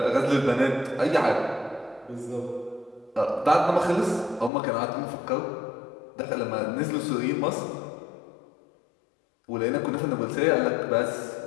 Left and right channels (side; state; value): right; drops out; at 4.5 s